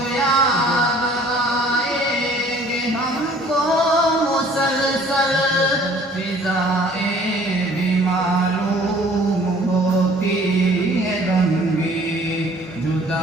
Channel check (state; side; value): normal; both; correlation 0.54